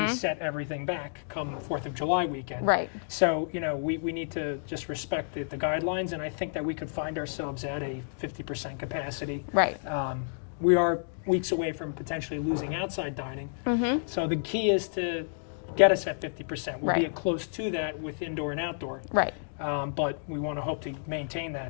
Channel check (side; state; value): right; silent; digital silence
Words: set everything back come 4th of July weekend. Right. So, we need to just respect the guidelines, and I think that we could find ourselves at a 50% capacity. Right. We are weeks away from potentially losing outside dining. So the key is to get us at 50%. We'll be close to that with indoor and outdoor. Right. But we want to hope to maintain